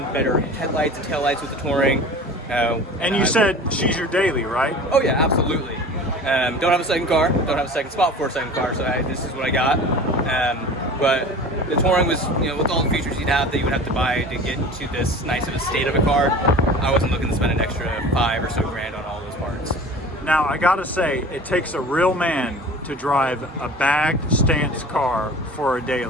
better headlights and taillights with the Touring. And you said she's your daily, right? Oh yeah, absolutely. Don't have a second car. Don't have a second spot for a second car. So this is what I got. But the Touring was, with all the features you'd have that you would have to buy to get to this nice of a state of a car, I wasn't looking to spend an extra $5 or so grand on all those parts. Now, I gotta say, it takes a real man to drive a bagged stance car for a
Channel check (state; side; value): normal; both; correlation 0.39